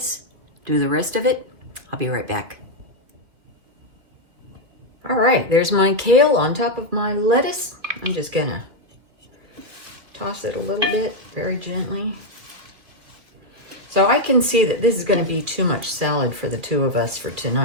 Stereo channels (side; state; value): left; late; 2.6 ms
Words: do the rest of it. I'll be right back. All right, there's my kale on top of my lettuce. I'm just going to toss it a little bit, very gently. So I can see that this is going to be too much salad for the two of us for